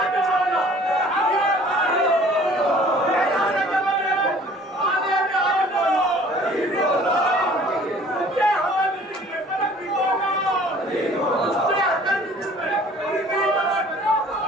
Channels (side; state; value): both; normal; correlation 0.51